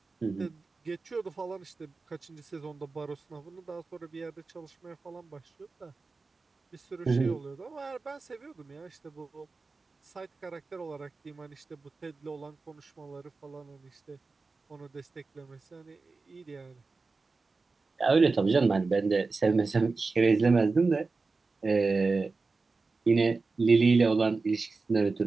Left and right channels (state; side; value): quieter; left; 4.0 dB